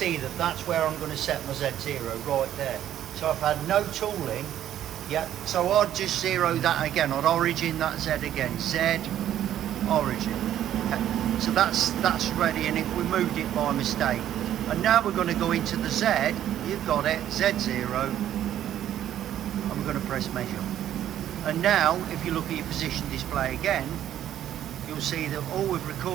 that that's where I'm going to set my Z0, right there. So I've had no tooling, yeah, so I'd just zero that again. I'd origin that Z again, Z, origin. Okay. So that's ready, and if we moved it by mistake. And now we're going to go into the Z, you've got it, Z0, and we're going to press measure. And now, if you look at your position display again, you'll see that all we've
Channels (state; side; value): quieter; left; 11.3 dB